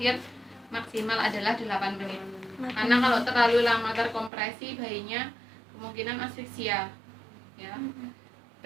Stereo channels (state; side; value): drops out; left; at 4.3 s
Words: maksimal adalah 8 menit. Karena kalau terlalu lama terkompresi bayinya kemungkinan asfiksia ya.